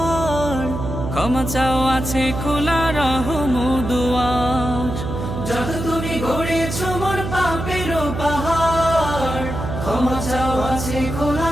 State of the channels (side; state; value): right; noise; hum, 5 dB below the sound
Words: ক্ষমা চাও আছে খোলা রহম দুয়ার। যত তুমি গড়েছো মন পাপেরও পাহাড়, ক্ষমা চাও আছে